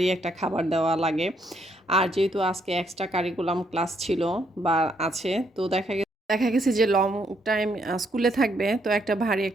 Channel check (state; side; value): normal; both; correlation 0.73